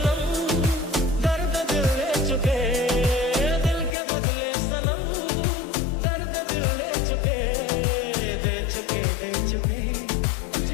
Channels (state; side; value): drops out; right; at 4.0 s